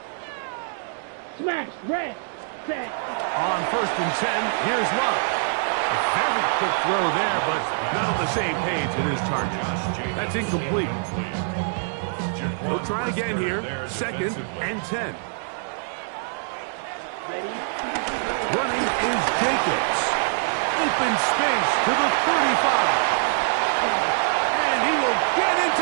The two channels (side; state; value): left; silent; digital silence